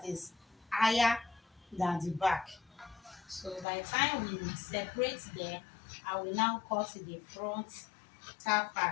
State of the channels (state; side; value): drops out; right; at 3.7 s